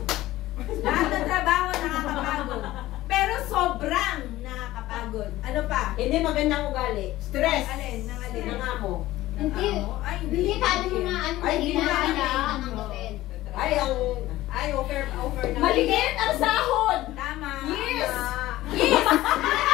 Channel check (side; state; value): right; quieter; 16.2 dB